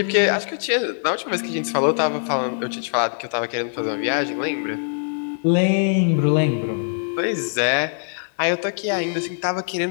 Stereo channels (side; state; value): right; silent; digital silence